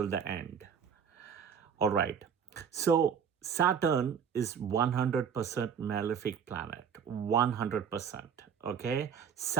the end. All right. So Saturn is 100% malefic planet. 100%. Okay.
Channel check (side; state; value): left; quieter; 7.4 dB